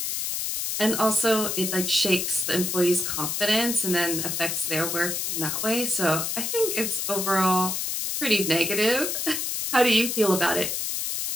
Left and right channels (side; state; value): left; noise; hiss, 1 dB below the sound